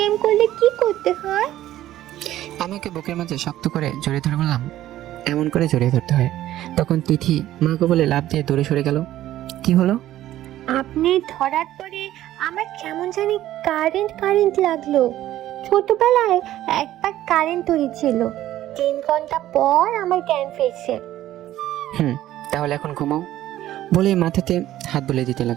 করলে কি করতে হয়? আমি ওকে বুকের মাঝে শক্ত করে জড়িয়ে ধরে বললাম, এমন করে জড়িয়ে ধরতে হয়। তখন তিথি মাকে বলে লাফ দিয়ে দূরে সরে গেল। কি হলো? আপনি ধরার পরে আমার কেমন জানি কারেন্ট কারেন্ট লাগলো। ছোটবেলায় একবার কারেন্ট হয়েছিল, 3 ঘন্টা পর আমার জ্ঞান ফিরছে। তাহলে এখন ঘুমাও বলে মাথাতে হাত বুলে দিতে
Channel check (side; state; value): left; quieter; 13.7 dB